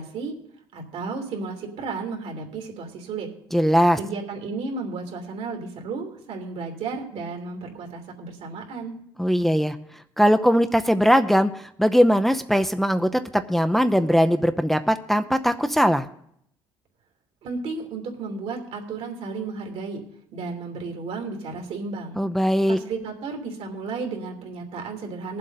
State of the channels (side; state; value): both; normal; correlation 0.91